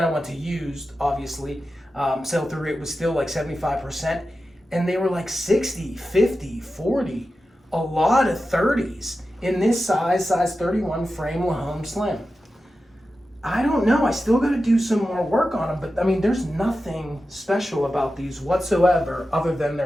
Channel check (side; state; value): both; normal; correlation 0.92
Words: I went to used, obviously. Sell-through rate was still like 75%. And they were like 60, 50, 40, a lot of 30s in this size 31 frame Lahome Slim. I don't know. I still got to do some more work on them, but I mean, there's nothing special about these whatsoever other than